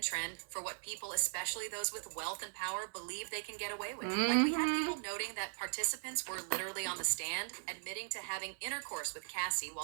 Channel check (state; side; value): silent; left; digital silence